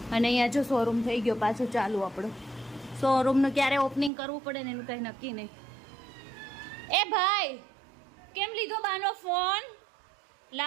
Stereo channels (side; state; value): left; drops out; at 4.1 s